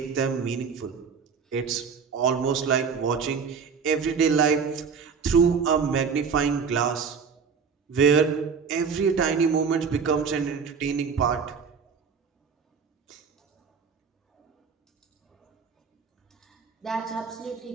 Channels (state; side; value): quieter; left; 6.0 dB